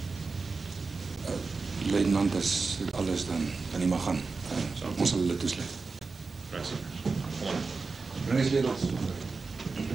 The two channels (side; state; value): left; quieter; 4.3 dB